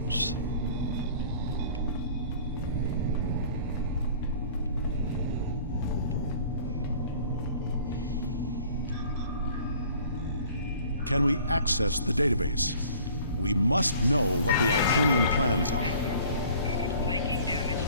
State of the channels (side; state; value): both; inverted; correlation -0.51